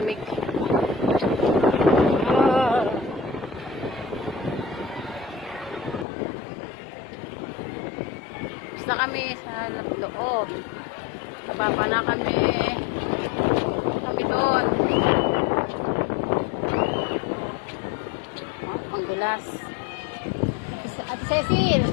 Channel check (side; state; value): right; drops out; at 6.1 s